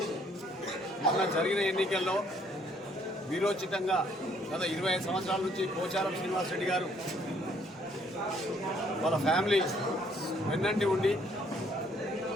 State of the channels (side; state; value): both; normal; correlation 0.65